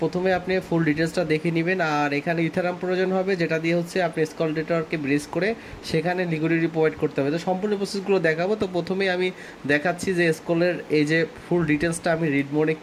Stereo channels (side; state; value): both; identical; correlation 1.00